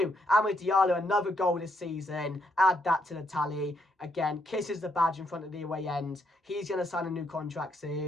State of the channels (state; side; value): normal; both; correlation 0.75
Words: Amad Diallo, another goal this season. Add that to the tally. Again, kisses the badge in front of the away end. He's going to sign a new contract